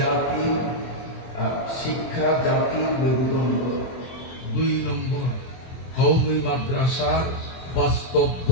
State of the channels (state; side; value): late; right; 24 ms